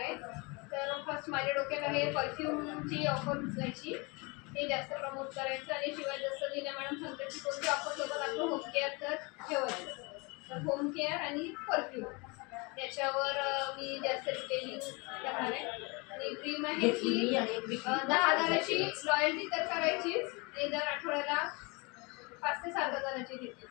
आहे. तर फर्स्ट माझ्या डोक्यात आहे परफ्यूमची ऑफर उचलायची, ते जास्त प्रमोट करायचं. आणि शिवाय जसं लीना मॅडम सांगतात की कोणती ऑफर सोबत आपलं होम केअर तर ठेवायचं. तर होम केअर आणि परफ्यूम त्याच्यावर मी जास्त रिटेलिंग करणार आहे. आणि ड्रीम आहे की 10,000ची लॉयल्टी तर करायचीच, आणि दर आठवड्याला 5 ते 7,000ची घेते.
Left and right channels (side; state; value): right; quieter; 28.4 dB